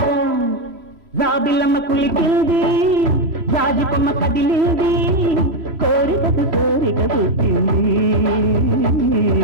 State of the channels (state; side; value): late; left; 3.0 ms